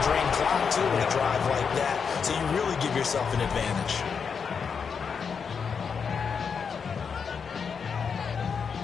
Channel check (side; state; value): right; quieter; 6.2 dB